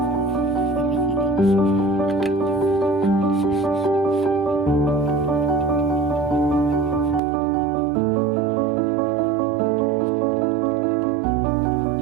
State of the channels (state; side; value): drops out; left; at 7.2 s